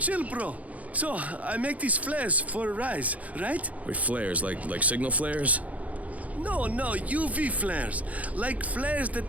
bro. So, I make these flares for a rise, right? Wait, flares? Like signal flares? No, UV flares. Like flares that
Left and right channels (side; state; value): left; late; 0.070 ms